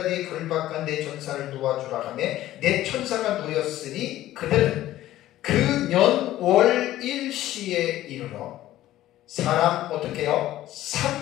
걸박한 내 천사를 도와주라 하며 내 천사가 놓였으니 그들은 그 년 월 일시에 이르러 사람 어떻게 해요?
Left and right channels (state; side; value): quieter; right; 14.4 dB